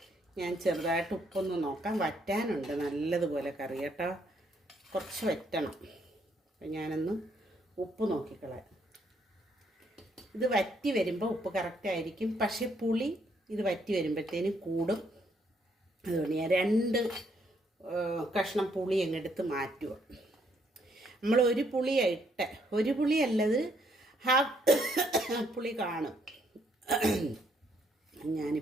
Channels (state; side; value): normal; both; correlation 0.71